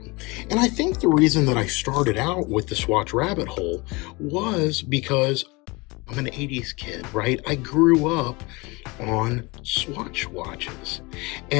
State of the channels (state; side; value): quieter; right; 25.4 dB